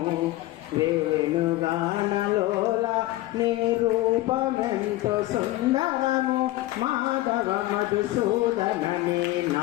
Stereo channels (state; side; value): quieter; right; 17.4 dB